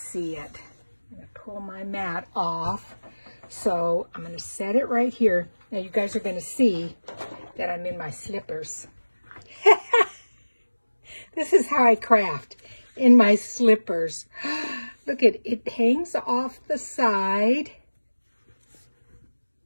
it. I'm going to pull my mat off. So I'm going to set it right here. Now you guys are going to see that I'm in my slippers. This is how I craft, in my slippers. Look at it, hangs off the side.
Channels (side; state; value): both; inverted; correlation -1.00